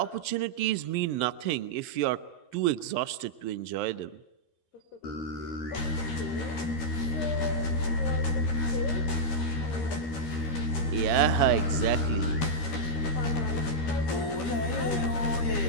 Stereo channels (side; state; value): right; late; 13 ms